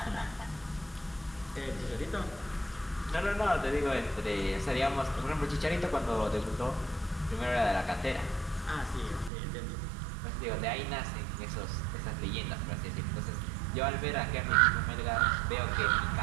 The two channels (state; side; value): drops out; left; at 9.3 s